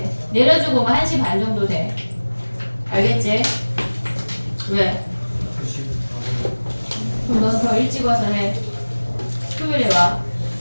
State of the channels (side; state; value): both; inverted; correlation -1.00